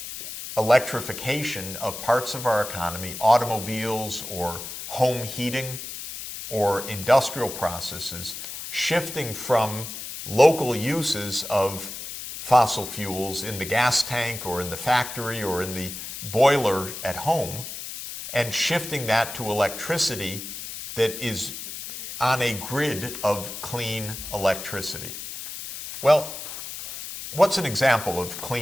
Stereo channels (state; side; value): noise; left; hiss, 9 dB below the sound